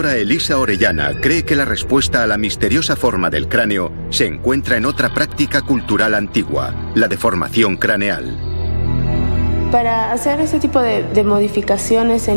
Elisa Orellana cree que la respuesta a la misteriosa forma del cráneo se encuentra en otra práctica cultural antigua, la deformación craneal. Para hacer ese tipo de modificaciones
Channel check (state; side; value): inverted; both; correlation -1.00